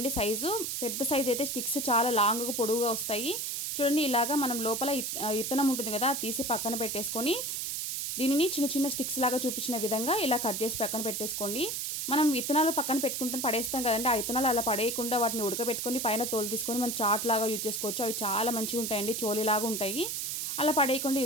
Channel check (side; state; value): right; noise; hiss, 2 dB below the sound